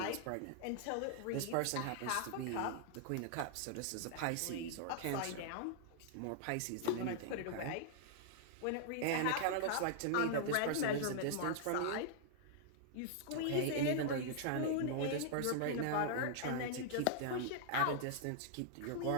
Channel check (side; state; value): both; different; correlation -0.01